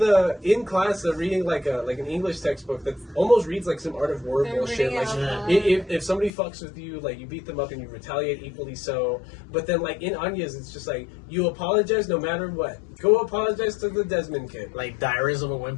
in class they're reading like an English textbook that almost reads like some Art of War They're bullshit. reading Like out loud. if somebody fucks with you, like you beat them up and you retaliate equally so. But then like in Anya's, it's just like you apologize no matter what. Go apologize to the Desmond kid. Like Diaries of a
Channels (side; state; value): right; drops out; at 6.3 s